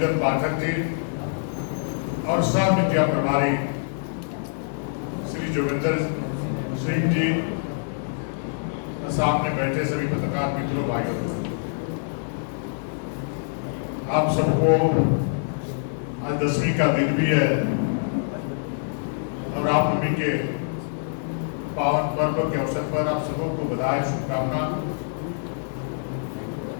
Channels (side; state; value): right; silent; digital silence